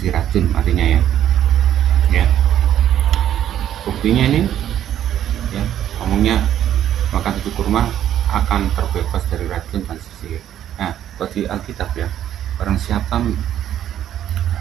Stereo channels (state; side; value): quieter; left; 11.0 dB